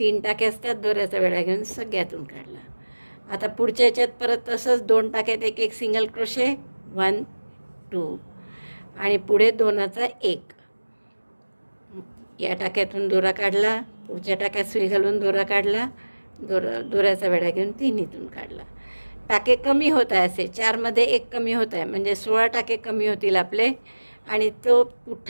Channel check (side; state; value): both; inverted; correlation -1.00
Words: टाके असतात, दोऱ्याचा वेढा घेऊन सगळ्यातून काढला. आता पुढच्या ह्याच्यात परत तसंच 2 टाक्यात एक एक सिंगल क्रोशे 1, 2 आणि पुढे दोनाचा एक. या टाक्यातून दोरा काढला, पुढच्या टाक्यात सुई घालून दोरा काढला, दोऱ्याचा वेढा घेऊन 3हीतून काढला. टाके कमी होत आहे, असे 4मध्ये एक कमी होत आहे, म्हणजे 16 टाके कमी होतील आपले. आणि तो